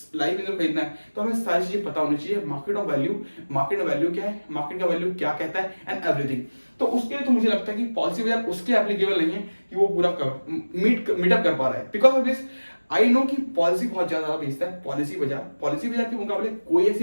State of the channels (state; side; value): inverted; both; correlation -1.00